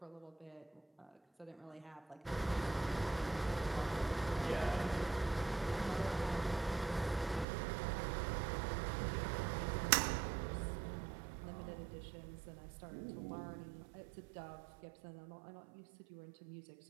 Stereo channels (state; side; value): drops out; left; at 7.5 s